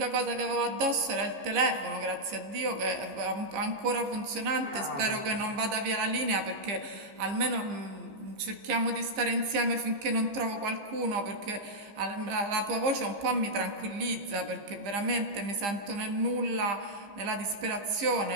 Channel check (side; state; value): left; late; 15 ms